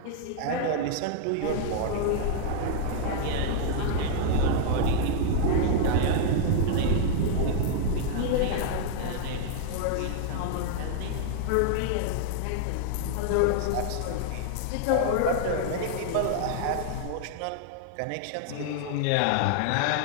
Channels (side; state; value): both; different; correlation -0.01